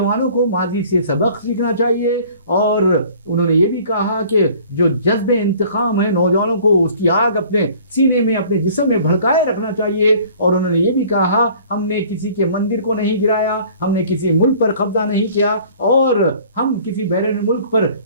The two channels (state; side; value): inverted; both; correlation -0.51